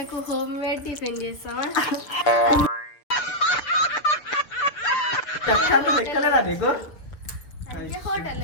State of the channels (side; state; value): right; late; 6.8 ms